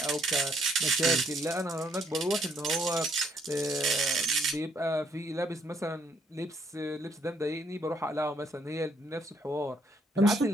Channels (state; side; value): normal; both; correlation 0.69